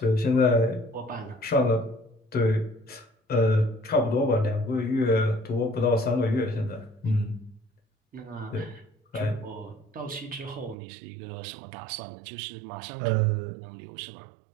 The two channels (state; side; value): drops out; left; at 10.8 s